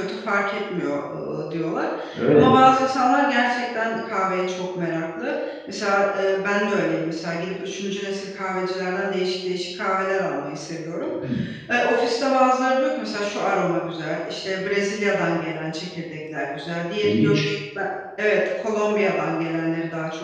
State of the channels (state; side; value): identical; both; correlation 1.00